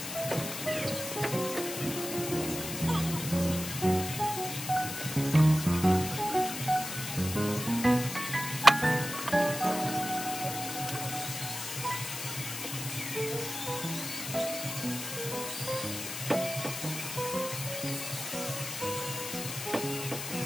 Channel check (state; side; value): noise; left; hiss, 6 dB below the sound